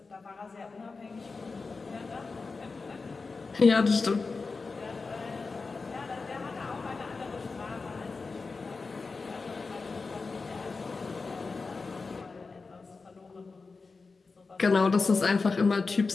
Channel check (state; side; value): quieter; right; 4.2 dB